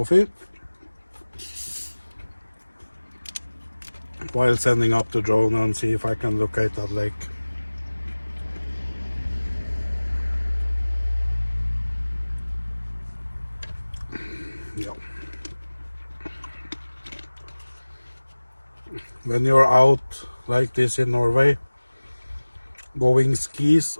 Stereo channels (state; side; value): inverted; both; correlation -1.00